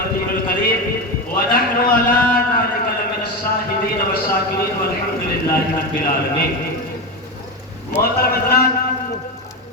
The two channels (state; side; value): normal; both; correlation 0.17